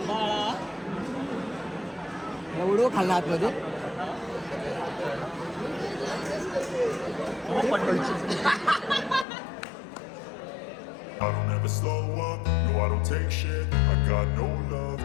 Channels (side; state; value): right; drops out; at 9.2 s